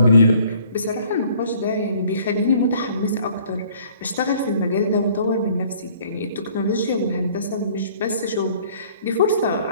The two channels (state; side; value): inverted; both; correlation -0.56